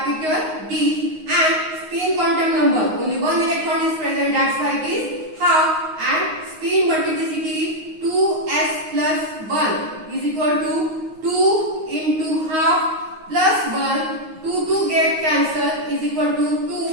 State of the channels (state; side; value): late; left; 9.5 ms